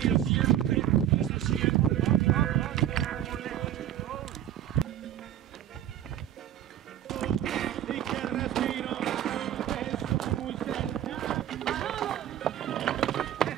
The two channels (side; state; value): left; quieter; 11.4 dB